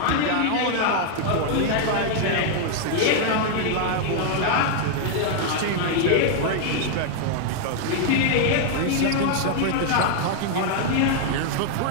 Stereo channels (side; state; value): both; different; correlation 0.00